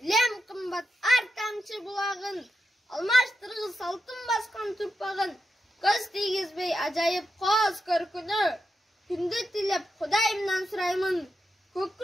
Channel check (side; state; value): both; normal; correlation 0.87